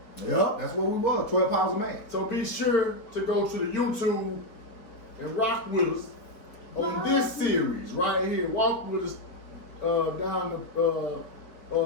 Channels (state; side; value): late; right; 4.6 ms